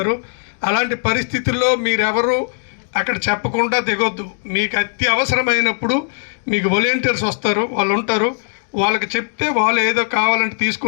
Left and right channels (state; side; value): silent; right; digital silence